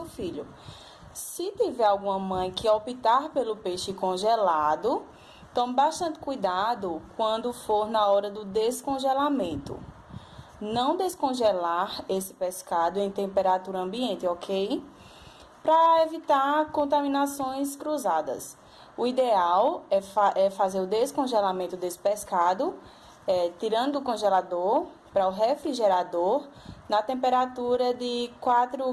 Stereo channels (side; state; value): both; identical; correlation 1.00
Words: filho. Se tiver alguma mãe que optar pelo peixe congelado, tome bastante cuidado quando for na hora do descongelamento. Não descongelar esse pescado em temperatura ambiente, ok? Para evitar contaminações cruzadas. O ideal é fazer o descongelamento desse pescado, tirando do congelador para o refrigerador, na temperatura de 4